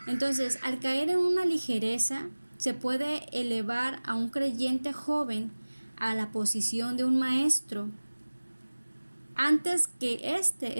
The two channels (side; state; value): both; inverted; correlation -1.00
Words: Entonces, al caer en una ligereza, se puede elevar a un creyente joven a la posición de un maestro antes que éste